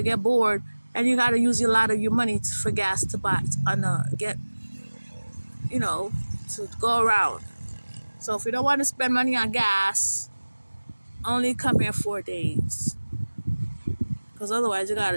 get bored and you gotta use a lot of your money for gas to buy get to go around. So if you don't want to spend money on gas, only come here 4 days, because otherwise you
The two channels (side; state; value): both; inverted; correlation -1.00